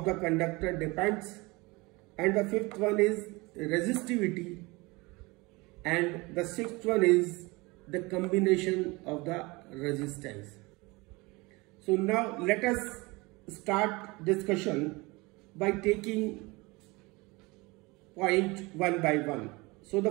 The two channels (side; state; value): left; quieter; 24.3 dB